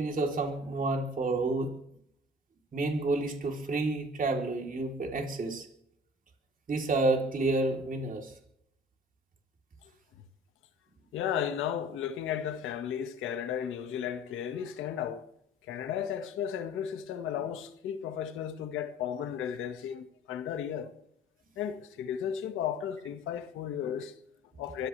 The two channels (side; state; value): both; normal; correlation 0.46